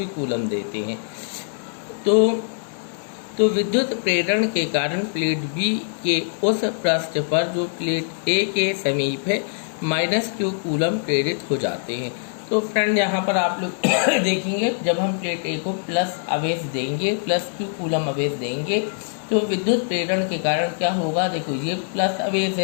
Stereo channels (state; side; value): silent; right; digital silence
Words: कूलम देते हैं, तो विद्युत प्रेरण के कारण प्लेट बी के उस पृष्ठ पर जो प्लेट ए के समीप है माइनस क्यू कूलम प्रेरित हो जाते हैं। तो फ्रेंड यहाँ पर आप लोग देखेंगे, जब हम प्लेट ए को प्लस आवेश देंगे, प्लस क्यू कूलम आवेश देंगे, तो विद्युत प्रेरण के कारण क्या होगा, देखो ये प्लस आवेश